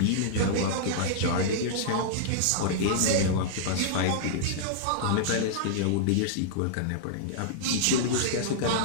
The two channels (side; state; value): both; different; correlation -0.02